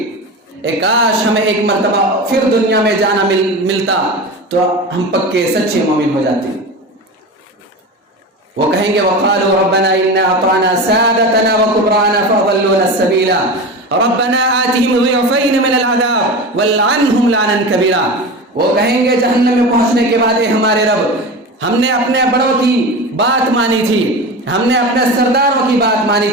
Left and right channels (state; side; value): normal; both; correlation 0.27